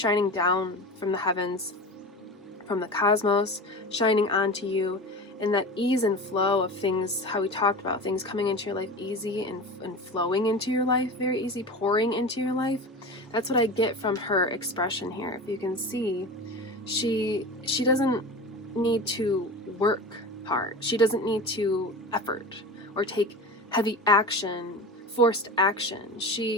down from the heavens, from the cosmos, shining onto you, and that ease and flow of things, how we talked about things coming into your life easy and flowing into your life, very easy, pouring into your life. That's what I get from her expression here. If you can see, she doesn't need to work hard. She doesn't need to effort or take heavy action, forced action.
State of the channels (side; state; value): both; normal; correlation 0.30